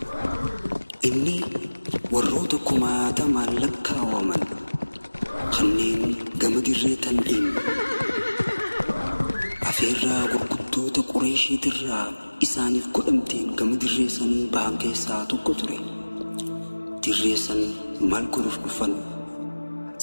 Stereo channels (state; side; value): inverted; both; correlation -1.00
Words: إني وروتكما تمالكا ومن خنين قمد الريتن إن أفيرا وقدوت قريشي ترى إساني في قدمتين قمد الريسن بانكي ساتو قطري تريسن مالكو رفقفن